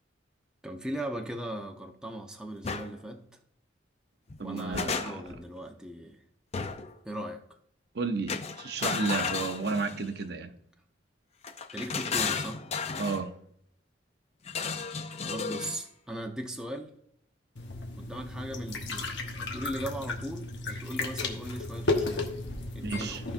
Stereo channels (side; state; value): both; normal; correlation 0.35